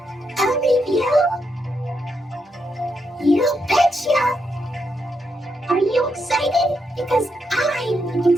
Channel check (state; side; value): normal; both; correlation 0.81